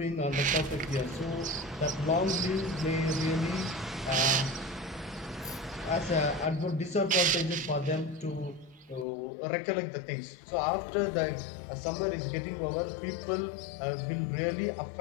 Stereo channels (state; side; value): drops out; right; at 9.1 s